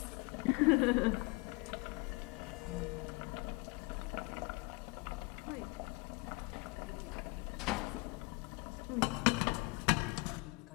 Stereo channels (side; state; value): right; quieter; 26.9 dB